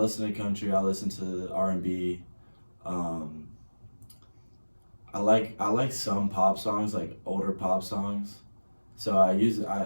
to country. I listen to R&B. I like some pop songs, like older pop songs. So I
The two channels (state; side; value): inverted; both; correlation -1.00